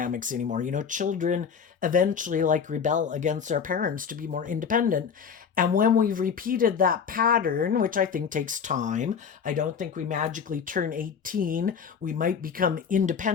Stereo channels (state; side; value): quieter; right; 6.7 dB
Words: anymore. Children eventually rebel against their parents to be more independent. And when we've repeated that pattern, which I think takes time, I don't think we magically turn 18. We might become